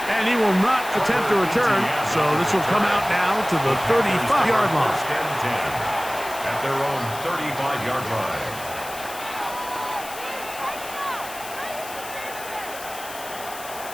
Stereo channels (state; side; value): noise; left; hiss, 13 dB below the sound